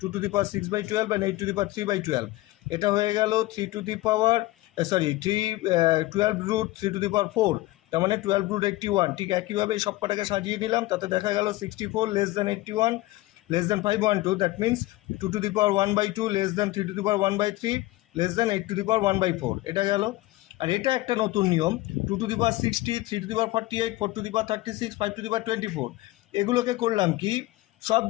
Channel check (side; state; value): right; quieter; 18.5 dB